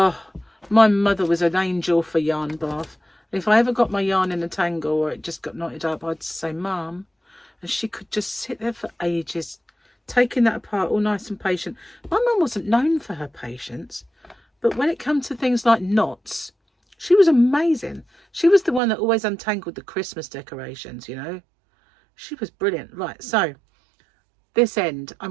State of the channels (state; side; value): drops out; left; at 18.8 s